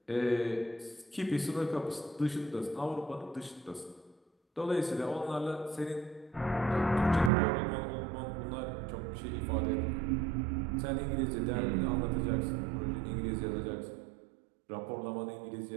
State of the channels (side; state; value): left; drops out; at 7.3 s